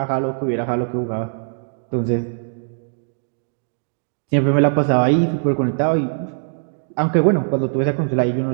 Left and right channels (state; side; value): silent; left; digital silence